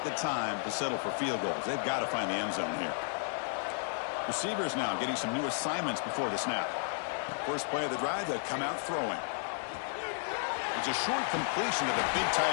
the time to settle for field goals. They've got to find the end zone here. Receivers now getting some new assignments before the snap. First play of the drive, they come out throwing. It's a short completion to the big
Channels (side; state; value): right; silent; digital silence